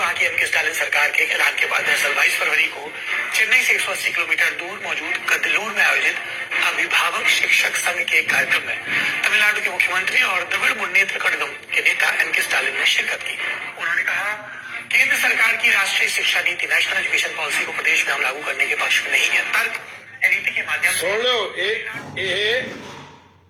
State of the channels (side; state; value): both; identical; correlation 1.00